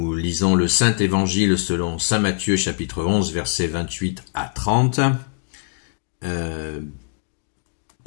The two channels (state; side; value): silent; right; digital silence